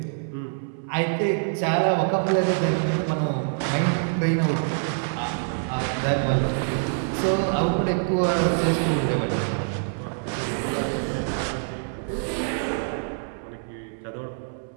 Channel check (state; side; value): silent; left; 61 dB below the other